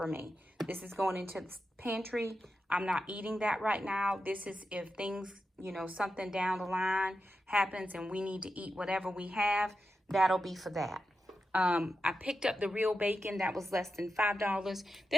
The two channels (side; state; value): both; normal; correlation 0.89